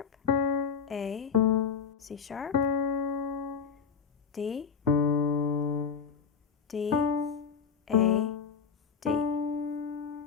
A, C sharp, D, D, A, D,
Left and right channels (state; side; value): quieter; right; 6.4 dB